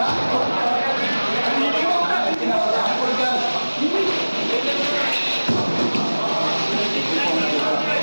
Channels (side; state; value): both; inverted; correlation -1.00